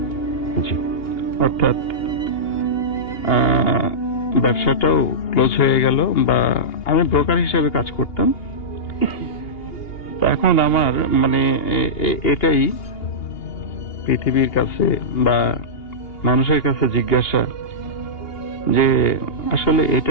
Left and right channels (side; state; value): right; late; 2.8 ms